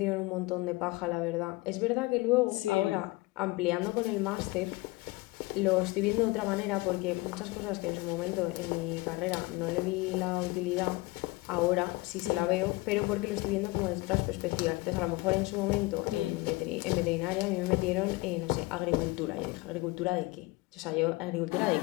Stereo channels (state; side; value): quieter; right; 22.4 dB